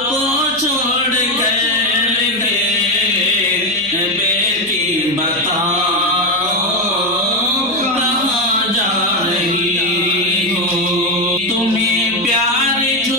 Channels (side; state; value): right; noise; hum, 22 dB below the sound